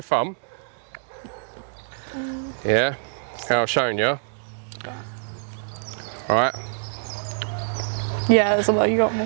thumb. Yeah, how I've shown you. Right. Yeah, there's a lot, you got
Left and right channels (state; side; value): silent; left; digital silence